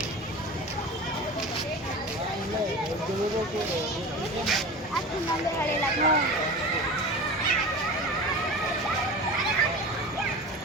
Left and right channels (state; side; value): normal; both; correlation 0.33